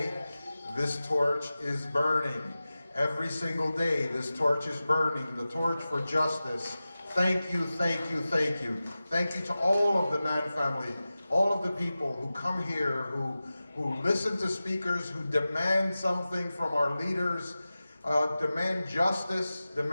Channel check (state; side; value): inverted; both; correlation -0.95